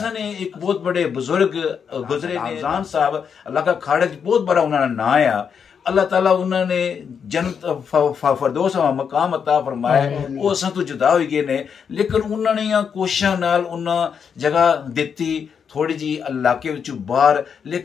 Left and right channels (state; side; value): quieter; right; 6.9 dB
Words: ने एक बहुत बड़े बुजुर्ग गुजरे आजान साहब इलाका खाड़े बहुत बड़ा उन्होंने ना आया, अल्लाह ताला उन्होंने जन्नत फरदौस मकाम अता फरमाया, वो असा तो जुदा हो गए ने, लेकिन उन्होंने कोशिशों नाल उन्हें जगह दी थोड़ी जी इलाके बाहर,